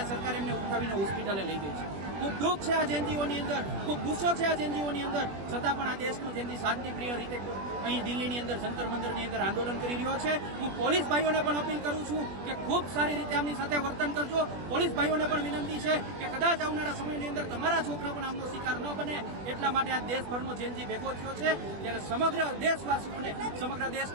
સરકાર એમને ઉઠાવીને હોસ્પિટલે લઈ ગઈ છે. ખૂબ દુઃખ છે આ જેનજીઓની અંદર, ખૂબ ગુસ્સો છે આ જેનજીઓની અંદર. છતાં પણ આ દેશનો જેનજી શાંતિપ્રિય રીતે અહીં દિલ્હીની અંદર જંતર મંતરની અંદર આંદોલન કરી રહ્યો છે. હું પોલીસ ભાઈઓને પણ અપીલ કરું છું કે ખૂબ સારી રીતે આમની સાથે વર્તન કરજો. પોલીસ ભાઈઓને પણ વિનંતી છે કે કદાચ આવનારા સમયની અંદર તમારા છોકરા પણ આમનો શિકાર ન બને, એટલા માટે આ દેશભરનો જેનજી ભેગો થયો છે. ત્યારે સમગ્ર દેશવાસીઓને, સમગ્ર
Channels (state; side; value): late; left; 20 ms